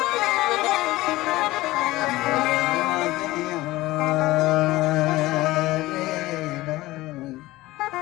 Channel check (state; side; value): quieter; right; 18.3 dB